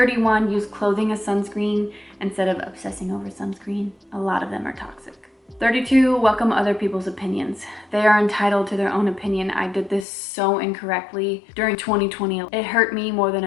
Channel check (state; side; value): drops out; right; at 10.1 s